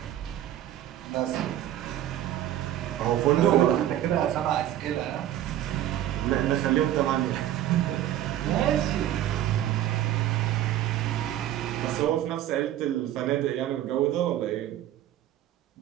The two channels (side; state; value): left; quieter; 12.4 dB